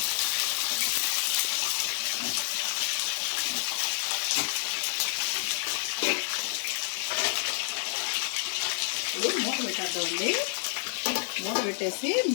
మూత పెట్టేద్దామండి. మూత పెట్టేసి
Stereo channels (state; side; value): silent; right; 55 dB below the other